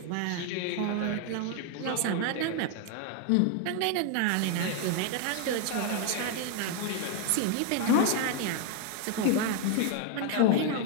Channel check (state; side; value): different; both; correlation 0.01